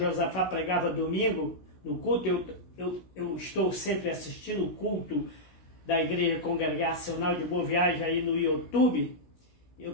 pregava domingo no culto. Eu estou sempre assistindo o culto da Igreja Congregacional de Boa Viagem aí no YouTube. Eu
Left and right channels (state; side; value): late; right; 16 ms